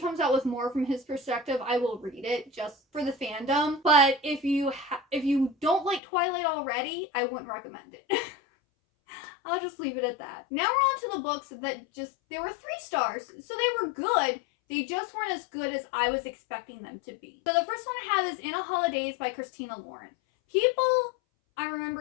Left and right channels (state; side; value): drops out; right; at 6.0 s